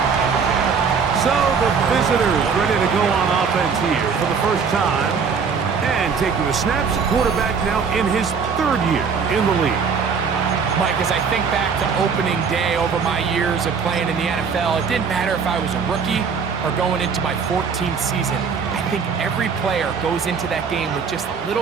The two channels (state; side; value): quieter; left; 5.9 dB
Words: So the visitors ready to go on offense here for the first time. And taking the snaps, quarterback now in his 3rd year in the league. Mike, as I think back to opening day over my years of playing in the NFL, it didn't matter if I was a rookie or going into my 14th season. I think every player goes into that game with just a